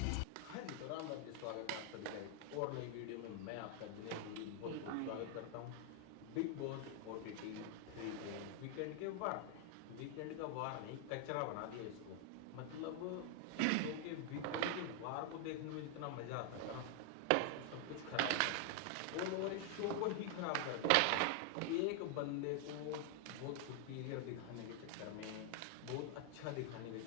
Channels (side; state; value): both; different; correlation 0.00